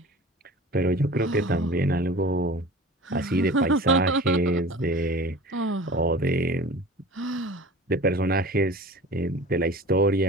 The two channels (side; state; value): both; normal; correlation 0.39